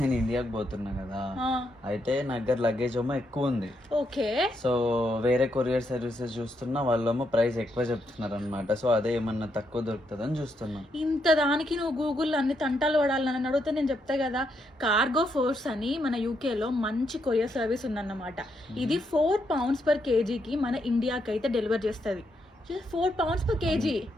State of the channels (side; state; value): both; normal; correlation 0.79